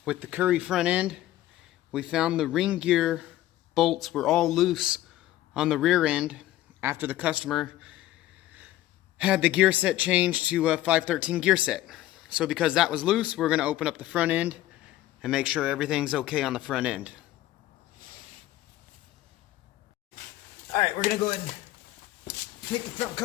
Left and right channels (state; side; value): quieter; right; 14.8 dB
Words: with the Curry front end. We found the ring gear bolts were all loose on the rear end after the customer had the gear set changed to a 513 gear set. So because that was loose, we're going to open up the front end and make sure everything's okay on the front end. Alright, we're going to go ahead and take the front